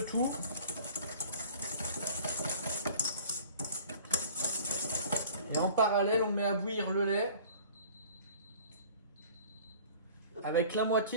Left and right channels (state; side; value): inverted; both; correlation -0.47